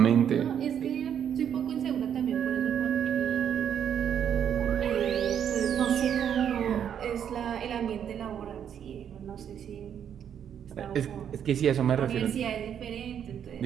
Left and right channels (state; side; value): quieter; left; 8.8 dB